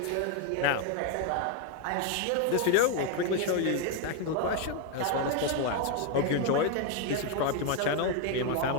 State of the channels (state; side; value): different; both; correlation 0.01